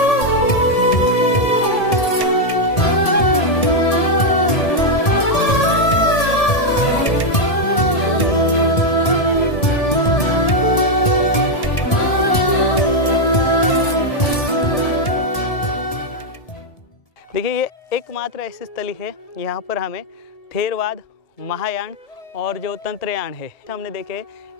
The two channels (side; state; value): right; late; 1.7 ms